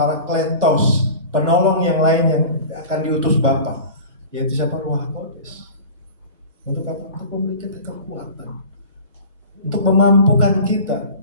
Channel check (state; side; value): inverted; both; correlation -0.38